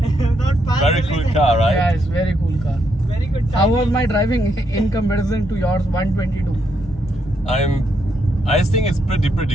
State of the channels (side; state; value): both; normal; correlation 0.78